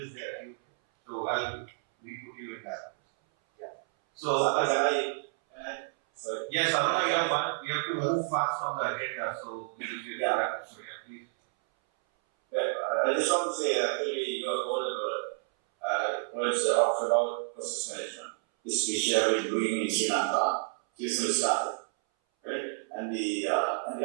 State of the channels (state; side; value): silent; left; 58 dB below the other